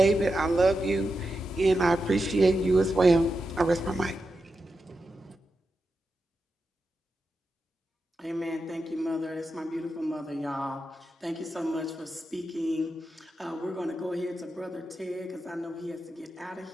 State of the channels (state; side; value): normal; both; correlation 0.89